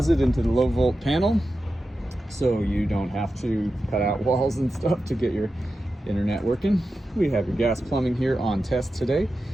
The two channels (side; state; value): both; normal; correlation 0.91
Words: into the low volt panel. So you don't have to cut out walls and stuff to get your internet working. We have your gas plumbing here on test today.